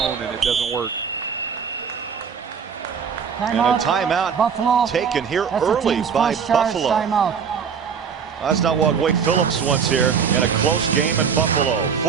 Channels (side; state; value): left; quieter; 6.7 dB